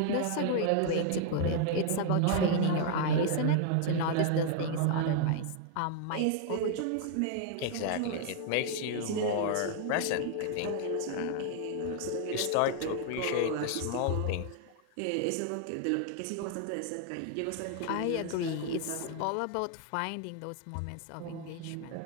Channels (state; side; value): different; both; correlation 0.00